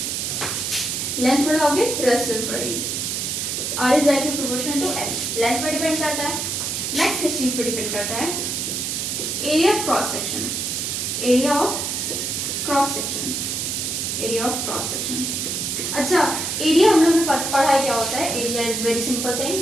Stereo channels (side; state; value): right; noise; hiss, 2 dB below the sound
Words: लेंथ बढ़ाओगे रेजिस्टेंस बढ़ेगी। R is directly proportional to L. Length पर डिपेंड करता है। नेक्स्ट किस चीज पर डिपेंड करता है? Area of cross section. Area of cross section, area of cross section. अच्छा, एरिया हम लोग ने पढ़ा है क्या होता है? Area is very simple